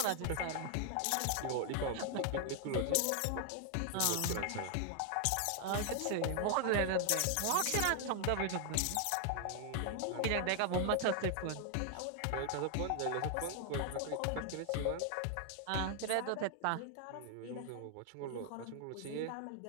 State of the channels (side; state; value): both; different; correlation 0.00